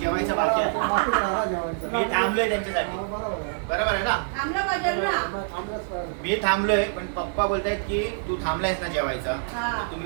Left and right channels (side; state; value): left; silent; digital silence